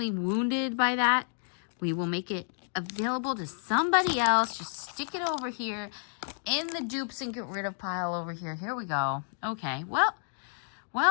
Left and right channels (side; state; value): right; silent; digital silence